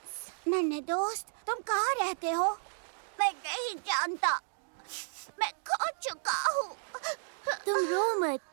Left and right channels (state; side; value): silent; left; digital silence